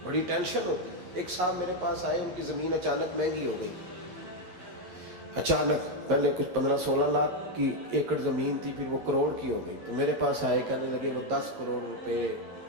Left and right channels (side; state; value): left; late; 11 ms